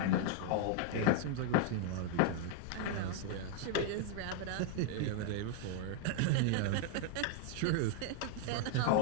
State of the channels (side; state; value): both; different; correlation 0.00